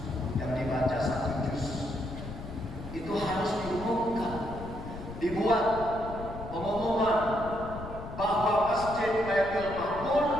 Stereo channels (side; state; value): left; noise; rumble, 11 dB below the sound